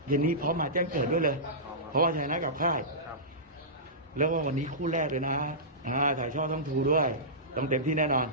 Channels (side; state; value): both; normal; correlation -0.18